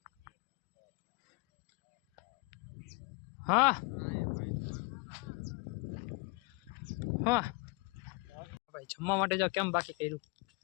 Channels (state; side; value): quieter; right; 29.2 dB